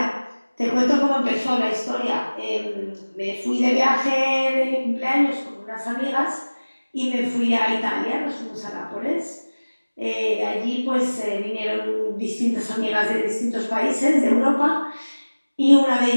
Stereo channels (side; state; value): both; inverted; correlation -1.00